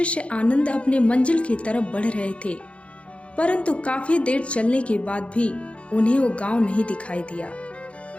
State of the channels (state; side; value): late; right; 0.061 ms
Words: आनंद अपने मंजिल की तरफ बढ़ रहे थे, परंतु काफी देर चलने के बाद भी उन्हें वो गांव नहीं दिखाई दिया।